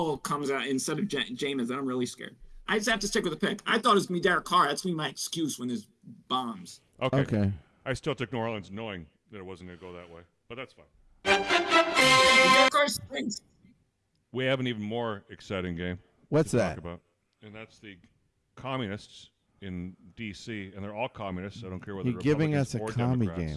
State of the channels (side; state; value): both; identical; correlation 1.00